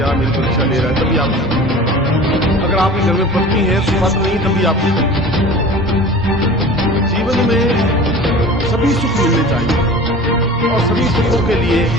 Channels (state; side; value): normal; both; correlation 0.40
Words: मेरी परीक्षा ले रहा है, तभी आप। अगर आपके घर में पत्नी है, सुपात्र नहीं, तभी आप। जीवन में सभी सुख मिलने चाहिए और सभी सुखों के लिए